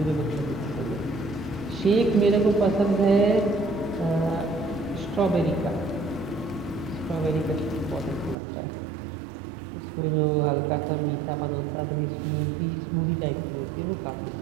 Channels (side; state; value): left; drops out; at 8.3 s